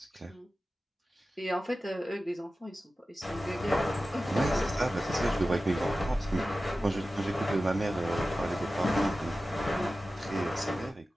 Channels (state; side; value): normal; both; correlation 0.95